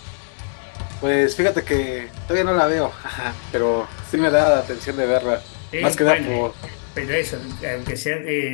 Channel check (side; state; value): right; silent; 63 dB below the other